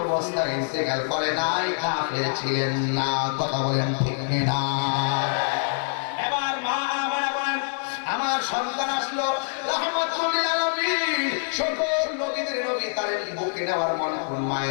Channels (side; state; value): right; silent; digital silence